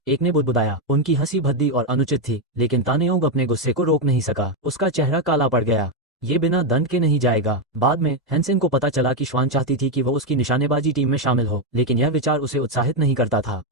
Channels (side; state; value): both; normal; correlation 0.05